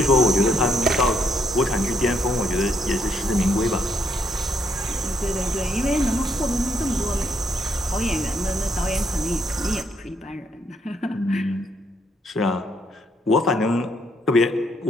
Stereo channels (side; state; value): both; normal; correlation 0.73